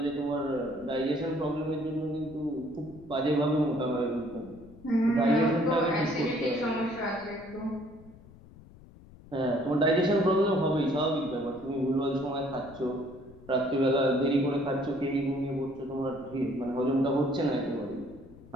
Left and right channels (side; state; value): left; noise; rumble, 21 dB below the sound